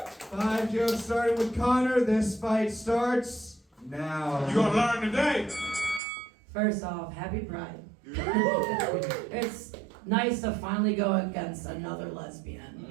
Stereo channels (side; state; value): left; drops out; at 6.0 s